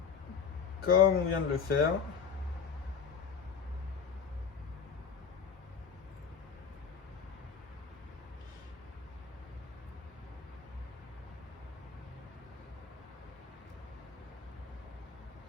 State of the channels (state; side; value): quieter; right; 6.3 dB